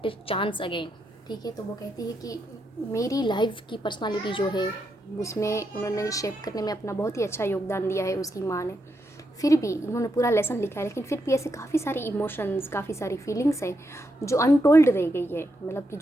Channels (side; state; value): both; normal; correlation 0.81